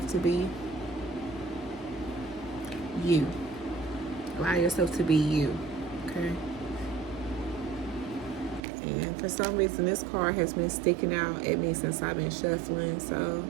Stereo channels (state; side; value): drops out; left; at 8.7 s